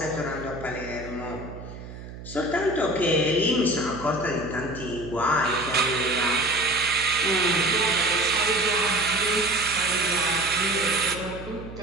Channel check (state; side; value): noise; right; hum, 13 dB below the sound